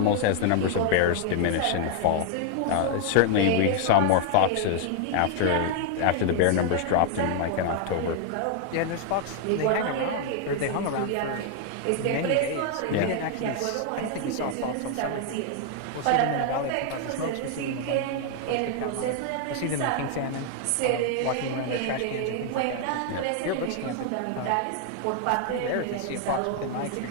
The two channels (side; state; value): both; different; correlation 0.00